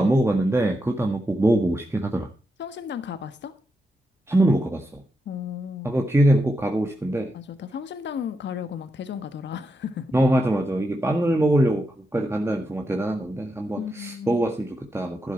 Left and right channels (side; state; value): both; normal; correlation 0.85